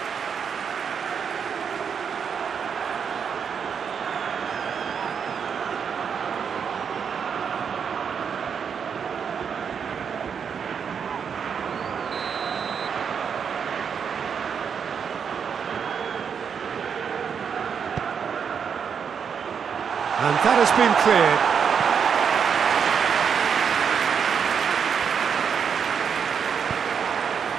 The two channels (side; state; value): left; quieter; 6.9 dB